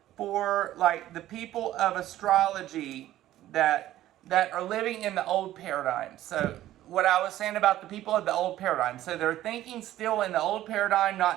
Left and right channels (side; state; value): left; quieter; 13.9 dB